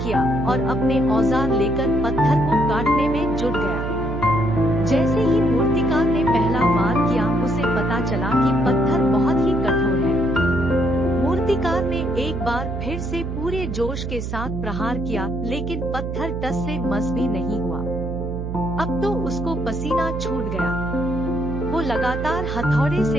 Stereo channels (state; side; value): noise; right; hum, 5 dB below the sound